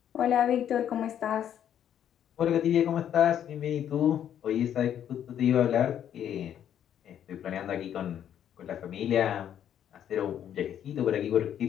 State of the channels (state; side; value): quieter; right; 9.9 dB